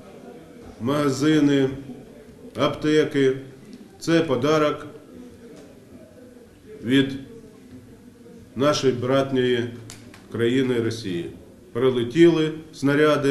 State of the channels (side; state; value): both; identical; correlation 1.00